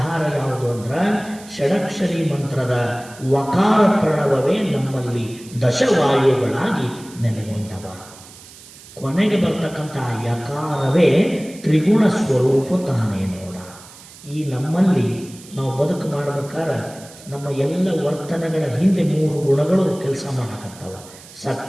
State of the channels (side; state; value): right; noise; hiss, 20 dB below the sound